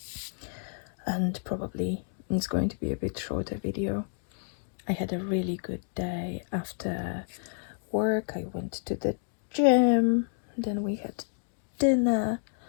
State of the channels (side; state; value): right; silent; 58 dB below the other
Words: and probably it's going to be a bit shorter video. I had a really good day after work. I went to the gym, then we had dinner,